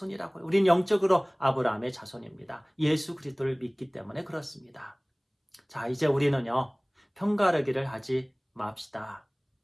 우리는 영적으로 아브라함의 자손입니다. 예수 그리스도를 믿기 때문에 그렇습니다. 자, 이제 우리는요. 편가르기를 하지 맙시다.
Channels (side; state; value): both; identical; correlation 1.00